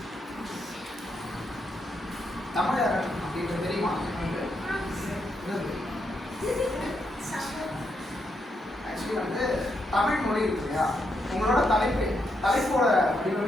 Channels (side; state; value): both; normal; correlation 0.80